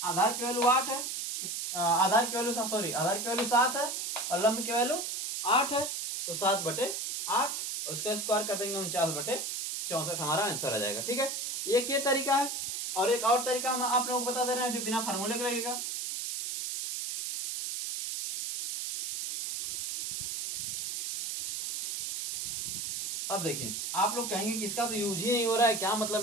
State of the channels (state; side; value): noise; right; hiss, 3 dB below the sound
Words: आधार की वैल्यू 8 है, आधार की वैल्यू 7 है और लंब की वैल्यू 8 है, तो 7/8 और इसका स्क्वायर कर देंगे 49/64 हमारा आंसर आ जाएगा। ठीक है, एक ये तरीका है, और एक और तरीका हम आप लोगों को बता दे रहे हैं जो बिना फार्मूले के लगेगा। अब देखिए, आप लोग कहेंगे कि इसका तो यूज ही नहीं हो रहा है, क्या